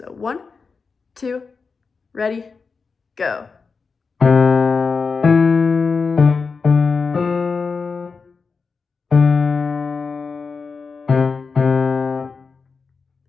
1, 2, ready, go.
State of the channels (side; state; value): right; quieter; 4.9 dB